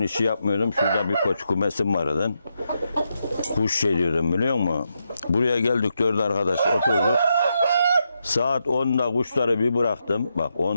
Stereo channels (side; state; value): both; inverted; correlation -0.83